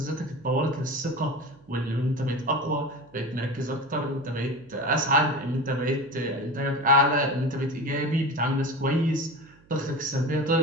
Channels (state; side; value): noise; right; hum, 28 dB below the sound